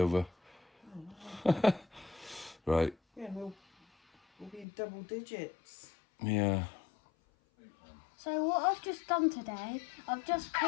Right. Yeah, we'll be in double digits. Yeah. So what I've just done today, I've just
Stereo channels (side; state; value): right; drops out; at 4.7 s